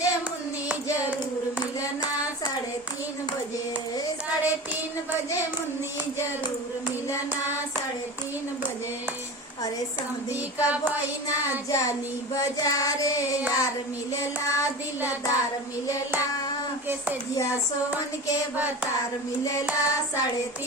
मुन्नी जरूर मिलना। 3:30 बजे 3:30 बजे मुन्नी जरूर मिलना। 3:30 बजे अरे समधी का बहिना जानी बाजारे, यार मिलेला दिलदार मिलेला, कैसे जिया सोवन के बतार मिलेला।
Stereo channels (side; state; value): both; normal; correlation 0.30